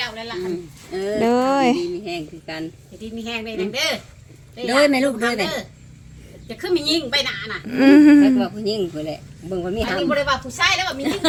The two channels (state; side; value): identical; both; correlation 1.00